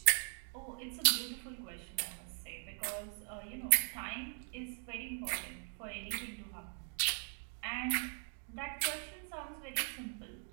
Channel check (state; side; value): silent; left; 51 dB below the other